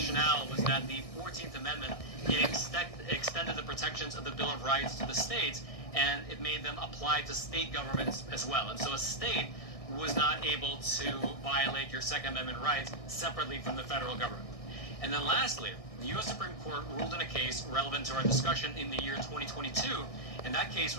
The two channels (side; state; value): right; late; 1.6 ms